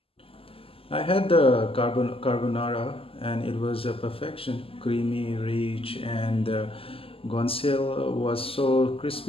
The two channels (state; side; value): late; right; 0.27 ms